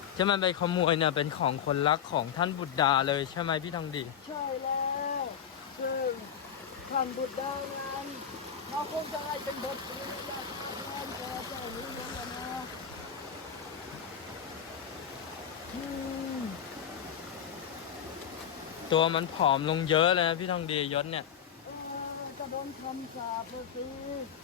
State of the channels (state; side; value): quieter; right; 8.4 dB